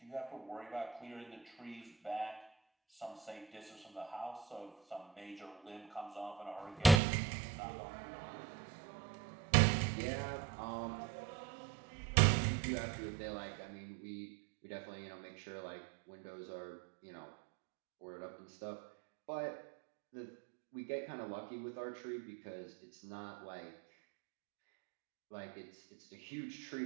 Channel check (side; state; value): left; drops out; at 7.0 s